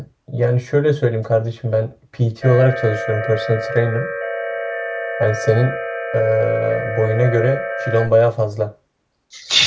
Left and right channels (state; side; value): identical; both; correlation 1.00